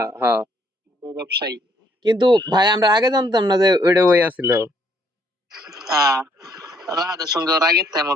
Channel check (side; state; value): both; normal; correlation 0.68